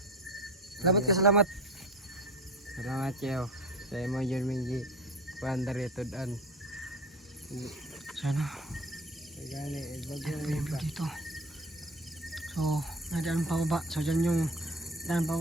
Salamat ka, salamat. Salamat siyo. Sa imo yun mingi. Kuandar ito daan. Sana. Gani, bago Ito yung view dito. So, may daan pababa. So, dyan yung daan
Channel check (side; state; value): both; normal; correlation 0.33